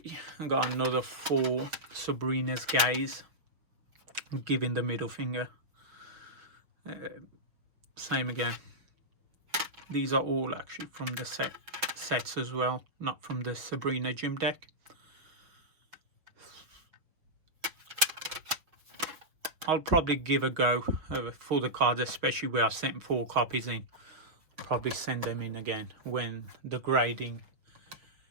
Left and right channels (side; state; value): left; late; 6.1 ms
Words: I got another 4 Sabrina's Gaze, giving the middle finger. Same again. These are all actually from the sets as well, not from the Sabrina gym deck. I'll probably give a go for the cards, especially where I sent 4 copies in. Probably send them in again when the grading